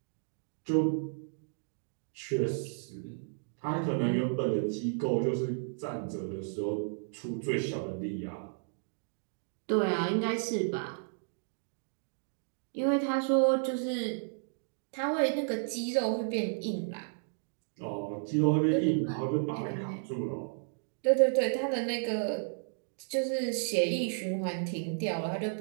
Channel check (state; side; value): silent; left; digital silence